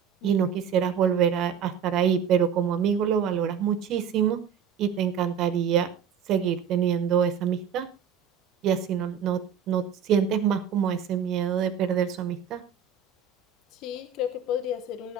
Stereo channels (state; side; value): quieter; left; 7.2 dB